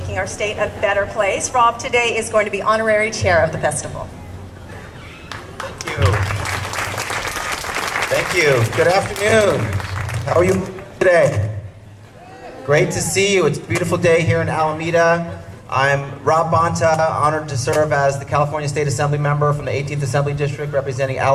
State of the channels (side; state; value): both; identical; correlation 1.00